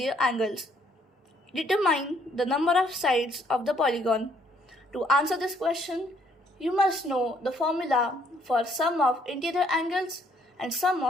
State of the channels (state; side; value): normal; both; correlation 0.67